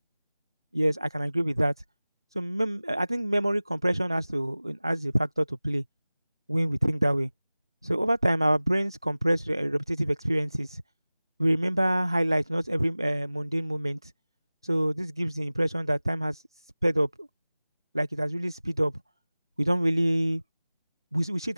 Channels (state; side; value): inverted; both; correlation -0.98